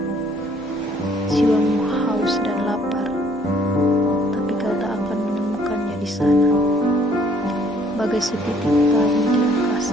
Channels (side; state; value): both; normal; correlation 0.62